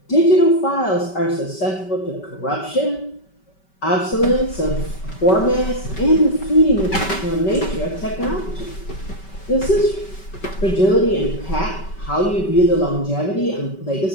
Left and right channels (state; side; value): late; right; 5.2 ms